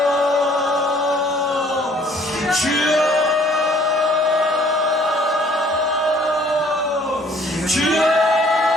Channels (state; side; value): normal; both; correlation 0.58